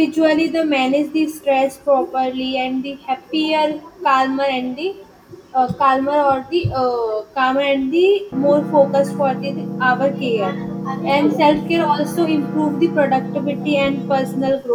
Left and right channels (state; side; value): identical; both; correlation 1.00